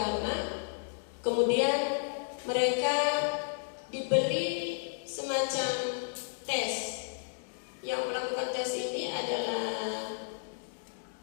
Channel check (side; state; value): right; silent; digital silence